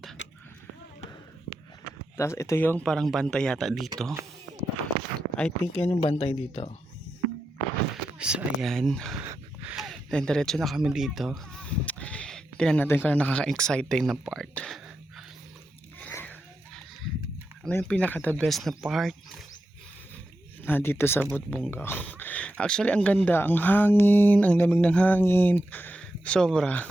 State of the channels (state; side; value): normal; both; correlation 0.88